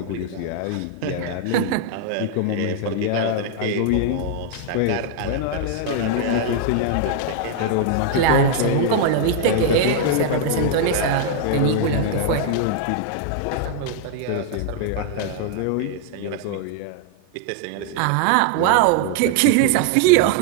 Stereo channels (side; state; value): both; different; correlation 0.00